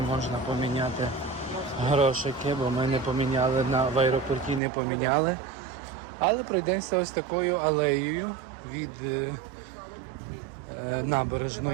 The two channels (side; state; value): left; drops out; at 4.6 s